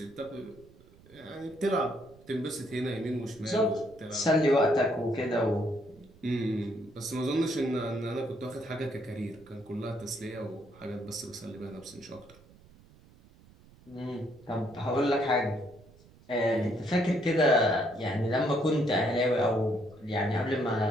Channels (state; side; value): noise; right; rumble, 25 dB below the sound